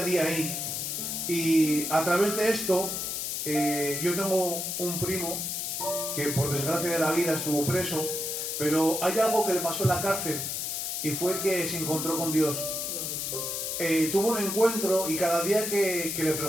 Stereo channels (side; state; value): left; noise; hiss, 3 dB below the sound